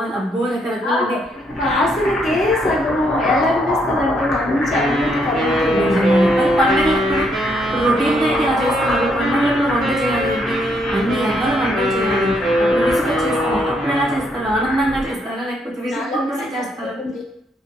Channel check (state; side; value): normal; both; correlation 0.73